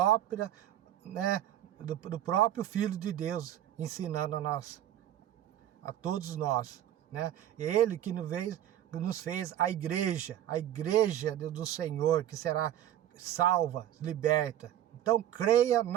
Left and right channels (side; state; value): left; quieter; 11.9 dB